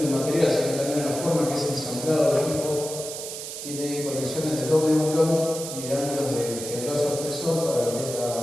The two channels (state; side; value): noise; right; hiss, 8 dB below the sound